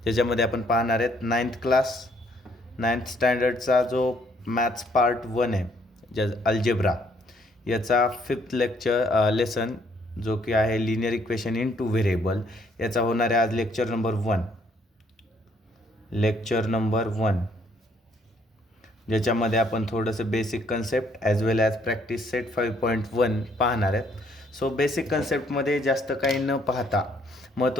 ज्याच्यामध्ये आपण पाहणार आहेत 9th स्टँडर्डचा जो मॅथ्स पार्ट 1 आहे, ज्या अल्जेब्रा याचा 5th लेसन जो की आहे linear equation in two variable, याचा होणार आहे आज लेक्चर नंबर 1, ज्याच्यामध्ये आपण थोडंसं basic concept as well as practice set 5.1 पाहणार आहेत. सो बेसिक कन्सेप्टमध्ये जास्त काही न पाहता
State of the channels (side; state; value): both; normal; correlation 0.67